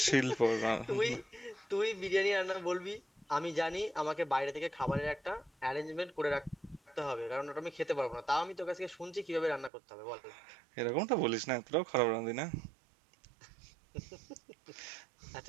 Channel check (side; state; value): left; drops out; at 9.7 s